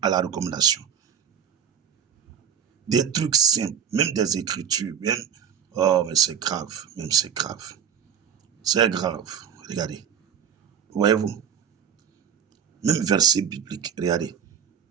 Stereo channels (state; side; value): quieter; left; 8.0 dB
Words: à la recommandation. Des trucs simples, même des écritures, même... Oh, mais c'est grave, même c'est grave. C'est grave. Regardez. Voyez-vous? Même verset biblique. Regardez.